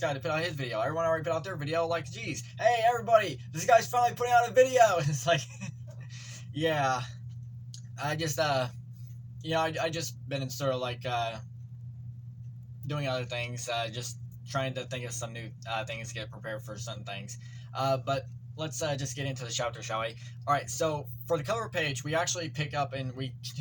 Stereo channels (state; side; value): identical; both; correlation 1.00